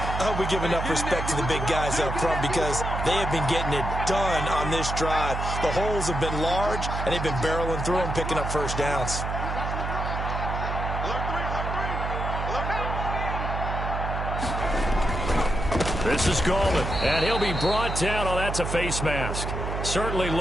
hope we give enough respect to the big guys up front because they have been getting it done on this drive. The holes have been large, and they've been barreling through them, picking up first downs. This is Gallman, and he'll be brought down. Oh, that's a face mask. Certainly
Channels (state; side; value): noise; right; hum, 3 dB below the sound